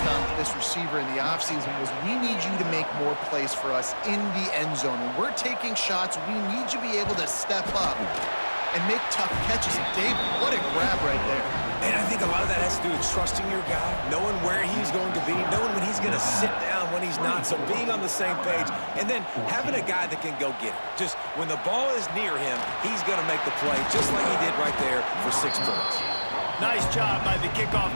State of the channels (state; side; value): inverted; both; correlation -1.00